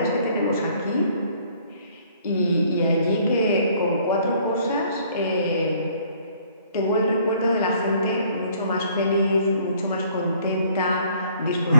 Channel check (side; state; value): both; inverted; correlation -0.59